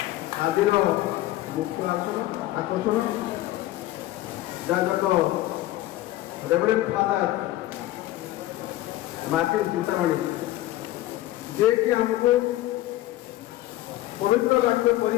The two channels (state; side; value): quieter; right; 15.7 dB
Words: ଆଜିର ମୁଖ୍ୟ ଆକର୍ଷଣ ଯାଜକ ରେଭରେଣ୍ଡ ଫାଦର ମାର୍ଟିନ ଚିନ୍ତାମଣି, ଯିଏକି ଆମକୁ ପବିତ୍ର ବାକ୍ୟ